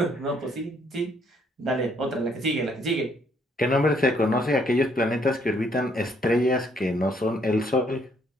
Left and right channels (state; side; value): normal; both; correlation 0.68